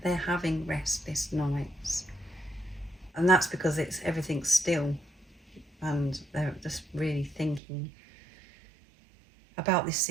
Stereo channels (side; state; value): left; drops out; at 7.6 s